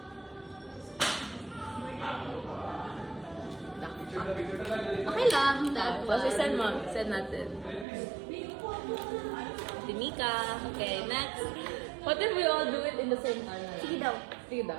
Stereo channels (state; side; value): drops out; left; at 7.9 s